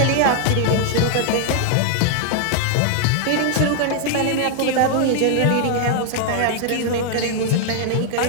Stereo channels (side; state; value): both; different; correlation 0.00